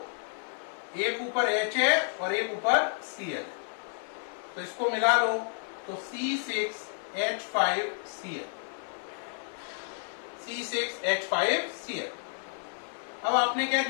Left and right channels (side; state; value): right; silent; 57 dB below the other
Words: एक ऊपर H है और एक ऊपर Cl है, तो इसको मिला लो तो C6H5Cl, C6H5Cl। अब आपने क्या